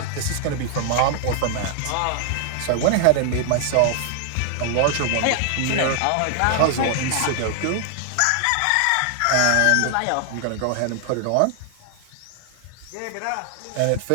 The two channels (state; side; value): different; both; correlation 0.00